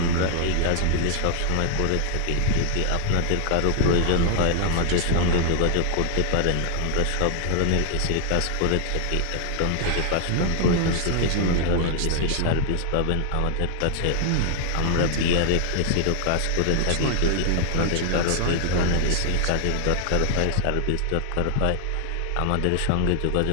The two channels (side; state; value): both; different; correlation 0.00